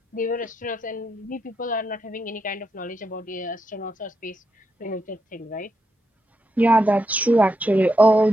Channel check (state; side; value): normal; both; correlation 0.82